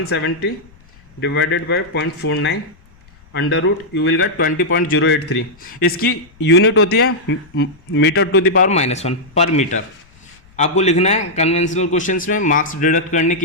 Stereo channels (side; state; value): left; noise; rumble, 28 dB below the sound